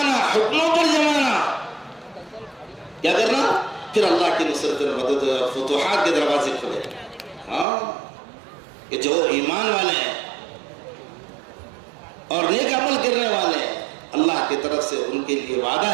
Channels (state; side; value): drops out; left; at 7.7 s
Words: حکموں پر جمانا. کیا کرنا؟ پھر اللہ کی نصرت اور مدد اور فتوحات کے دروازے کھلے. ہاں کہ جو ایمان والے ہیں اور نیک عمل کرنے والے ہیں، اللہ کی طرف سے ان کے لیے وعدہ